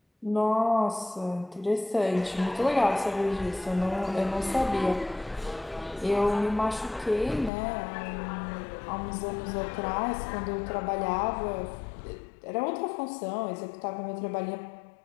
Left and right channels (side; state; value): right; drops out; at 7.5 s